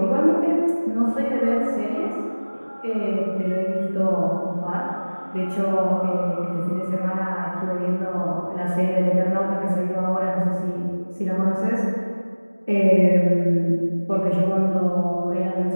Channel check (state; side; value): inverted; both; correlation -1.00